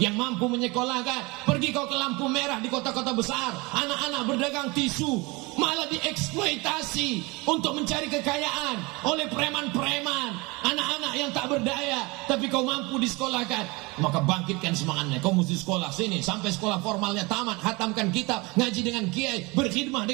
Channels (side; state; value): left; quieter; 25.2 dB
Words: mampu menyekolahkan, pergi kau ke lampu merah di kota-kota besar, anak-anak berdagang tisu malah dieksploitasi untuk mencari kekayaan oleh preman-preman, anak-anak yang tak berdaya, tapi kau mampu disekolahkan, maka bangkitkan semangatnya. Kau mesti sekolah sini sampai sekolah formalnya tamat, hatamkan kitab, ngaji dengan kiai, berkhidmah